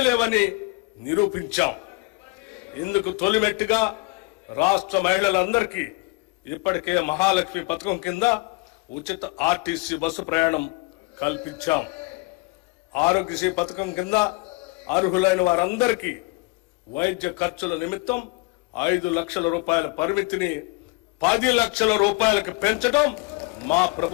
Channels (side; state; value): right; quieter; 26.2 dB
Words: లేవని నిరూపించాం. ఇందుకు తొలిమెట్టుగా రాష్ట్ర మహిళలందరికీ ఇప్పటికే మహాలక్ష్మి పథకం కింద ఉచిత ఆర్టీసీ బస్సు ప్రయాణం కల్పించాం. ఆరోగ్యశ్రీ పథకం కింద అర్హులైన వారందరికీ వైద్య ఖర్చుల నిమిత్తం 5 లక్షల రూపాయల పరిమితిని 10 లక్షల రూపాయలకు పెంచడం మా